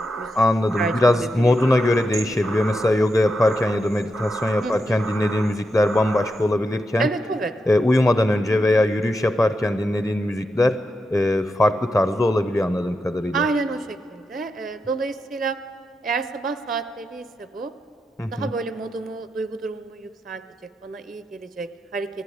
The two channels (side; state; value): both; normal; correlation 0.86